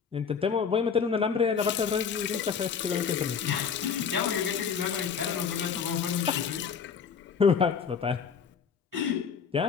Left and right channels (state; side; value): quieter; right; 6.5 dB